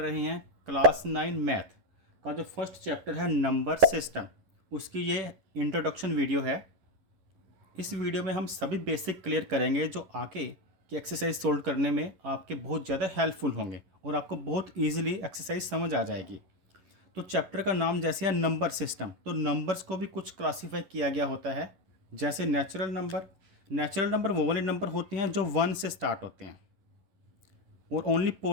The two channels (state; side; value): late; left; 11 ms